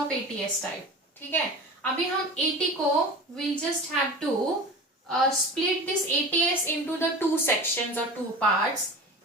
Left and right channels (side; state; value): both; normal; correlation 0.33